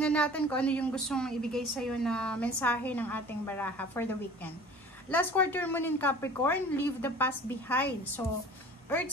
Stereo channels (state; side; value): normal; both; correlation 0.44